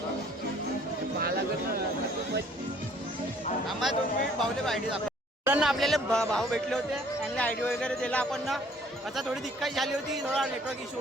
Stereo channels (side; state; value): both; normal; correlation 0.58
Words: आम्हाला 2 मिनिट भाऊले आयडी दाखव. आपल्याला भाऊ भेटले होते. त्यांना आयडी वगैरे दिला आपण ना. आता थोडी दिक्कत झाली होती. थोडा नेटवर्क इश्यू